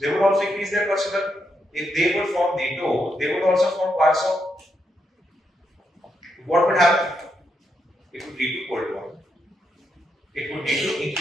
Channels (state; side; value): normal; both; correlation 0.81